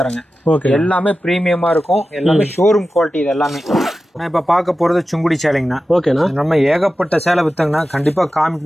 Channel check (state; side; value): normal; both; correlation 0.93